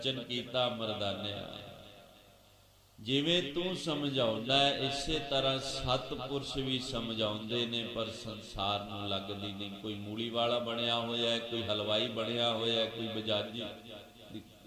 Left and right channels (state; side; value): identical; both; correlation 1.00